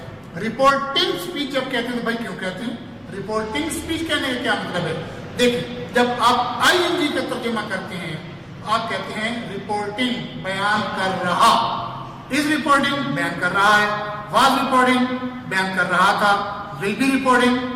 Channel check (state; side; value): identical; both; correlation 1.00